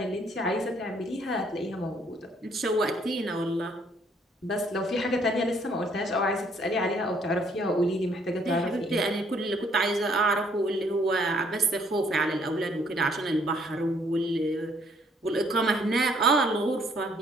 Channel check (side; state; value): both; normal; correlation 0.65